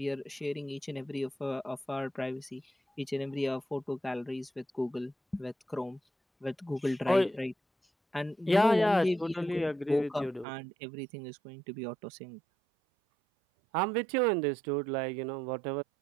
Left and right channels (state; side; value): drops out; left; at 10.5 s